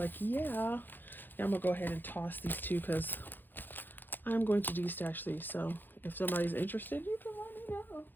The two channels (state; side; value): late; right; 0.092 ms